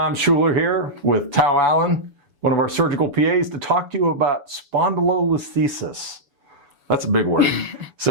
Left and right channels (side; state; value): left; late; 7.0 ms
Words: Schuler here with Tao Allen, one of our surgical PAs, to talk to you about spondylolisthesis. That's a big word.